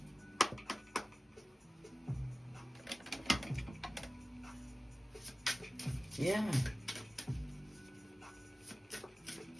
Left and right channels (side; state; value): both; normal; correlation 0.96